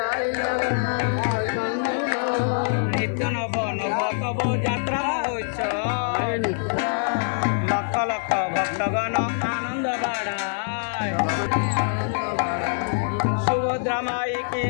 নিত্য নব নব তব যাত্রা মহোৎসব লক্ষ লক্ষ ভক্তগণ আনন্দ বাড়ায় সুভদ্রা মাই কি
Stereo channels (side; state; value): right; silent; 59 dB below the other